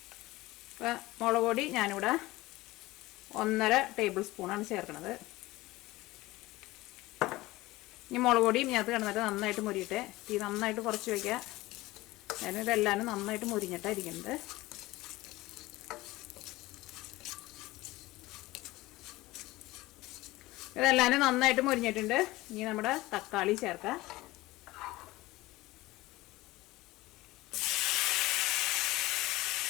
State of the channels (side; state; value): right; quieter; 19.1 dB